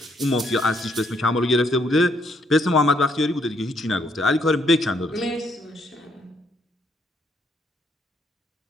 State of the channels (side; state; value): both; normal; correlation 0.72